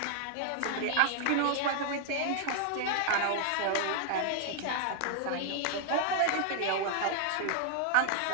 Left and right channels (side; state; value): both; different; correlation 0.00